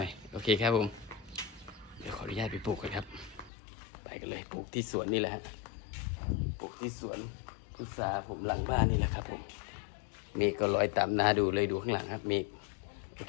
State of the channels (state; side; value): drops out; right; at 3.5 s